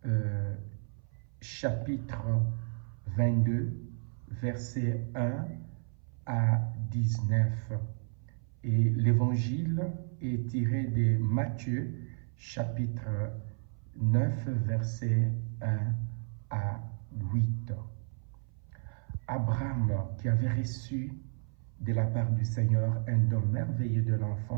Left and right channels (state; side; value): silent; left; 56 dB below the other